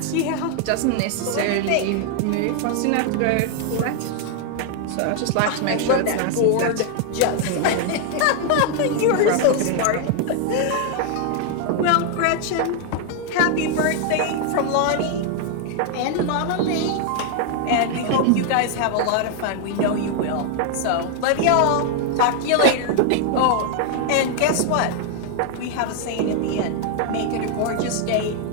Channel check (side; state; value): both; different; correlation 0.00